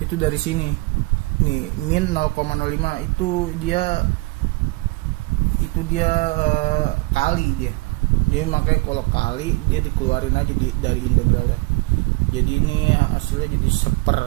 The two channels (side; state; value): left; quieter; 24.7 dB